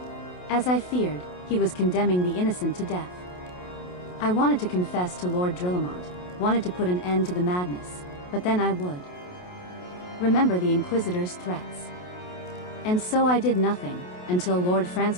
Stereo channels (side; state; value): right; late; 28 ms